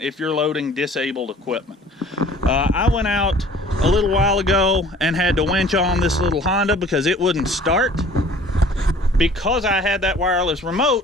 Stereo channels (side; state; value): both; normal; correlation 0.50